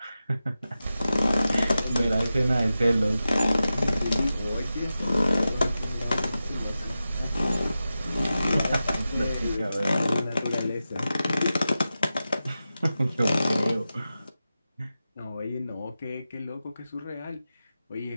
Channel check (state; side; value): inverted; both; correlation -0.92